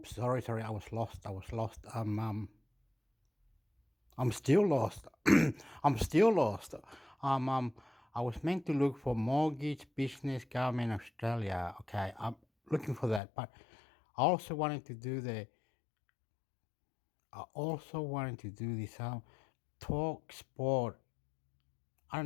Sorry. I was lost. I'm still lost. I'm still lost. Um. Um. I was meant to look for mortgage, business, government, Australia. Okay. I'm looking for that, but I also wanted to do the. I also wanted to do this. Talk sport. I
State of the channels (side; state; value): right; drops out; at 13.2 s